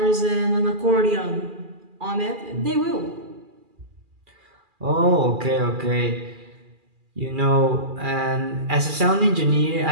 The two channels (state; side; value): late; left; 2.4 ms